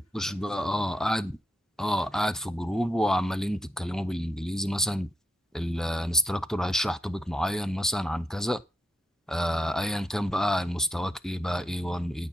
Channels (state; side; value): normal; both; correlation 0.84